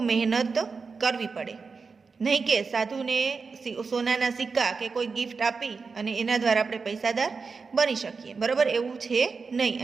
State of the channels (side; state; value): left; quieter; 4.8 dB